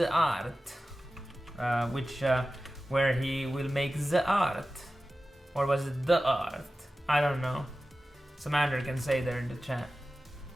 art, where he will make the art, or was it the art? I don't know. Samantha can say there in the chat.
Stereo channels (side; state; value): both; normal; correlation 0.95